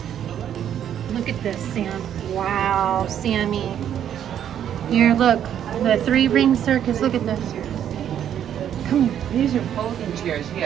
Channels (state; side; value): quieter; left; 9.8 dB